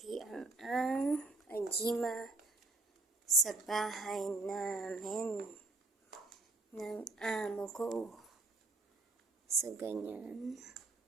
ang ajima sa bahay namin ng amo ko. So, ganyan.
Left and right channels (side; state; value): left; quieter; 3.2 dB